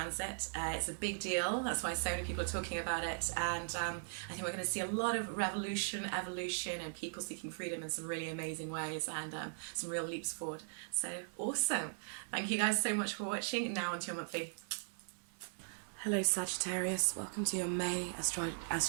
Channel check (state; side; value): silent; left; 52 dB below the other